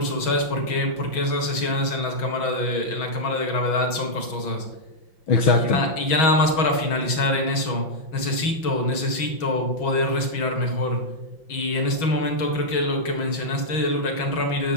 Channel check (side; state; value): right; late; 6.3 ms